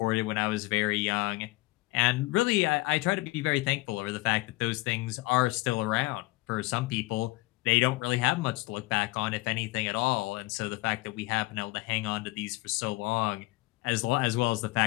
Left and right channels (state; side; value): quieter; right; 21.5 dB